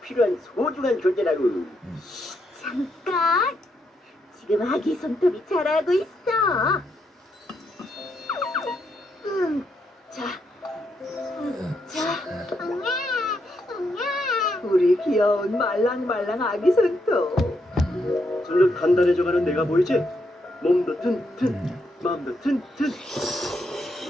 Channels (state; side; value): normal; both; correlation 0.79